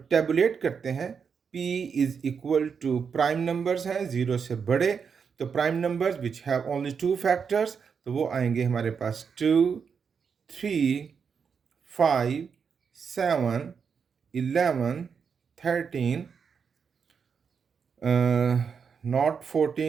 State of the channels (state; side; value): quieter; left; 6.3 dB